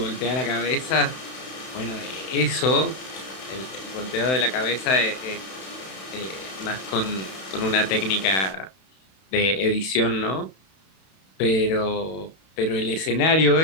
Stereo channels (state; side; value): late; right; 31 ms